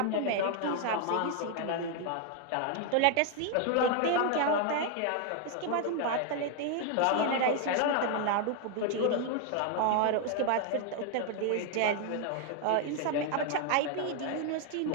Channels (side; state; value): both; different; correlation 0.00